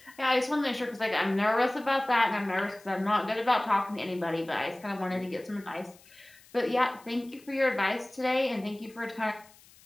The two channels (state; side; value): noise; left; hiss, 25 dB below the sound